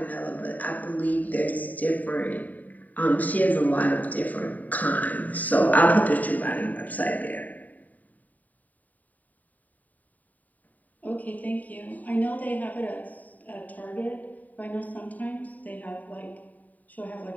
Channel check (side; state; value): right; late; 0.077 ms